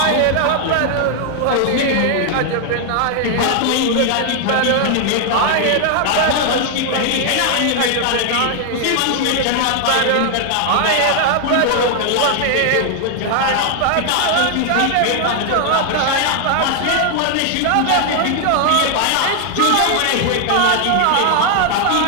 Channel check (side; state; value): both; different; correlation 0.00